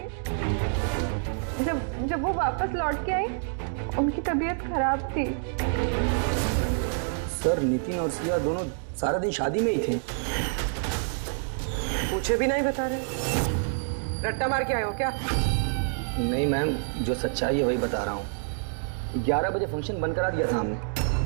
जब वो वापस लौट के आई उनकी तबीयत खराब थी। सर नितिन और सिया दोनों सारा दिन शादी में ही थे। पूछे भी नहीं बता रहे। रट्टा मार के आए हो क्या? नहीं मैम, जो सच्चाई है वही बता रहा हूँ। 11 बजे फंक्शन बंद करा दिया था हमने।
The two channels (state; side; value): silent; left; digital silence